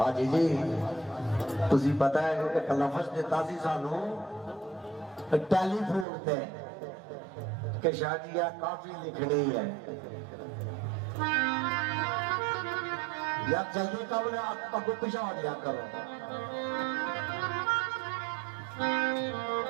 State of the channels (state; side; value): drops out; left; at 6.1 s